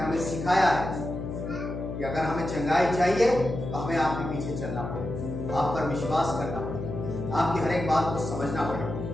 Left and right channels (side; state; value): left; noise; hum, 6 dB below the sound